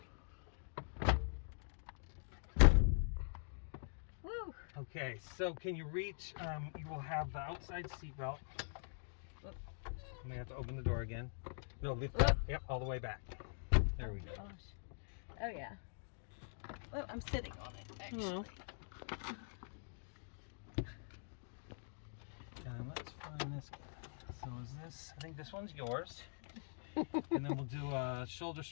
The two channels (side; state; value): right; silent; digital silence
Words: Woo! Okay, so can you reach? You will have the outside seatbelt. I may have to open the door again. No, lift that. Yep, all the way back. There we go. Gosh. Oh yeah. Well, I'm sitting on it actually. And let's find this guy. So is this? I think this one's yours. And then we'll do a shoulder